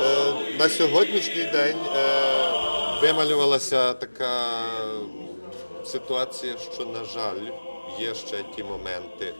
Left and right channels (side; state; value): both; inverted; correlation -1.00